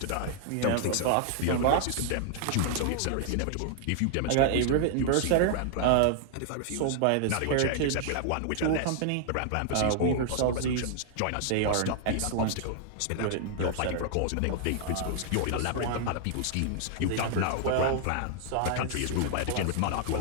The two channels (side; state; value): both; different; correlation 0.00